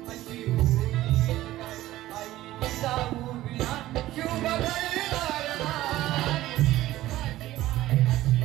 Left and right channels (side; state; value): left; quieter; 15.5 dB